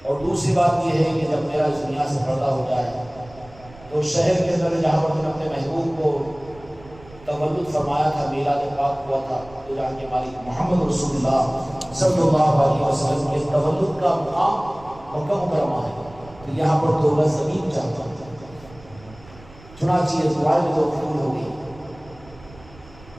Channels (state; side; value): noise; right; rumble, 22 dB below the sound